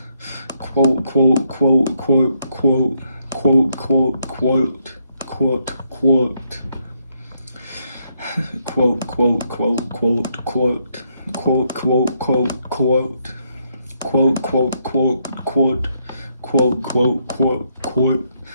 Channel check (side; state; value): both; inverted; correlation -0.75